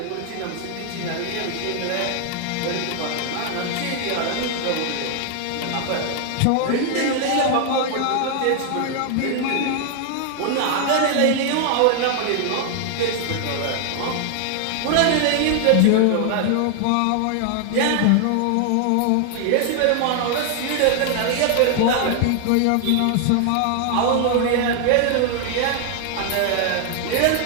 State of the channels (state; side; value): different; both; correlation 0.00